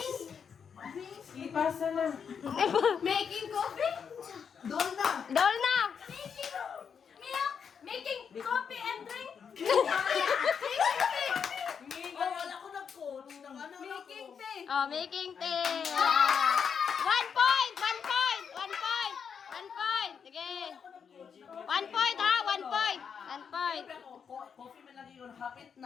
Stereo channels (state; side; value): quieter; right; 6.8 dB